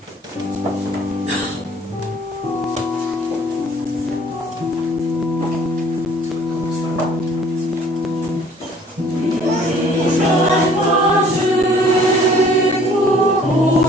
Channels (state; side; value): normal; both; correlation 0.55